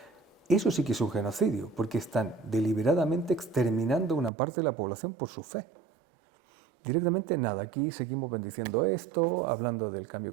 Eso sí que es un genocidio, porque están deliberadamente exterminando una parte de la población por su fe. Directamente nada, aquí seguimos bendiciendo esto, hablando del cambio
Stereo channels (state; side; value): drops out; left; at 4.3 s